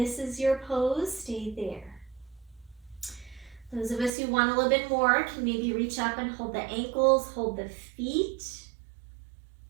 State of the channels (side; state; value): left; drops out; at 4.1 s